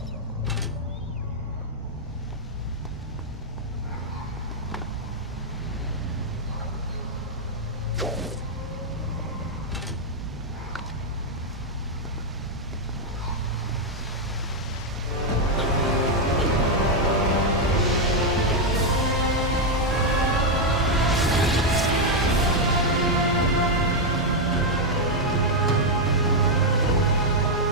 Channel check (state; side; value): normal; both; correlation 0.00